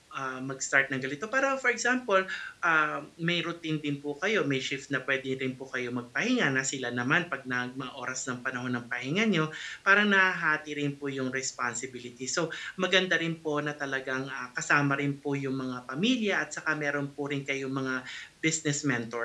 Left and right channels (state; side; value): identical; both; correlation 1.00